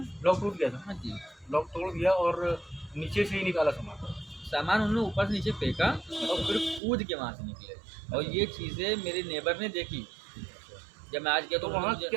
लॉक टूट गया था? हाँ जी, लॉक तोड़ दिया और नीचे से ही निकाला सामान। सामान उन्होंने ऊपर से नीचे फेंका और फिर कूद के वहाँ से निकले, और ये चीज़ें मेरे नेबर ने देखी। जब मैं आज गया तो तो उन्होंने वहाँ मुझे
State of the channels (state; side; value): drops out; left; at 6.8 s